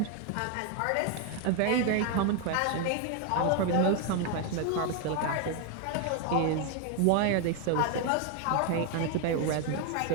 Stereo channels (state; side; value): different; both; correlation 0.01